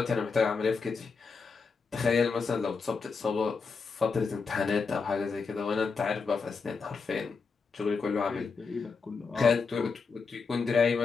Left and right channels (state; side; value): quieter; right; 4.9 dB